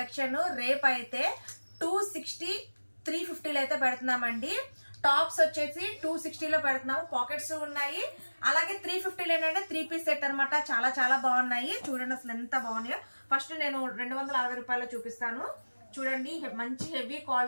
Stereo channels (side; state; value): both; inverted; correlation -1.00